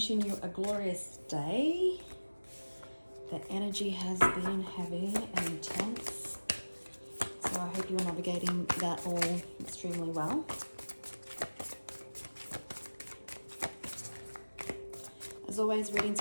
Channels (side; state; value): both; inverted; correlation -1.00